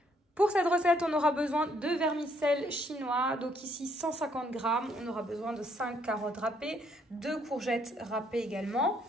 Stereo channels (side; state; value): both; normal; correlation 0.69